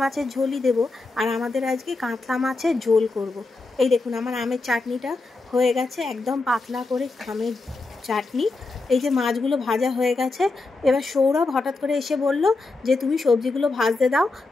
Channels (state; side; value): quieter; right; 3.4 dB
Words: মাছের ঝোলই দেবো, আর আমাদের আজকে কাতলা মাছের ঝোল করব। এই দেখুন আমার আমের চাটনিটা হয়ে গেছে, একদম পাতলা করে আমের চাটনি। এই যে মাছগুলো ভাজা হয়ে গেছে। এবার সৌরভ হঠাৎ করে এসে বলল যে তুমি সবজিগুলো ভাজতে দাও,